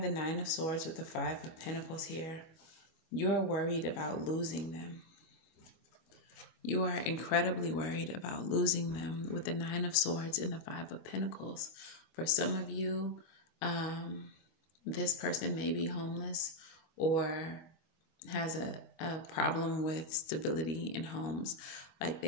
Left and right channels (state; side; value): late; right; 25 ms